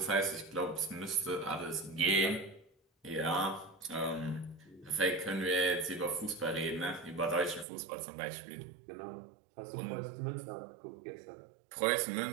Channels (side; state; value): left; drops out; at 7.7 s